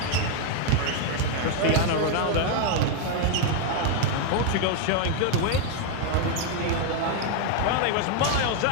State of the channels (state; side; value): different; both; correlation 0.00